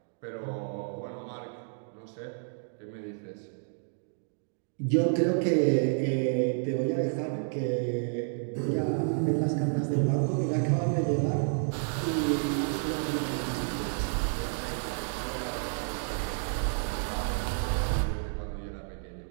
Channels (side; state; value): left; silent; digital silence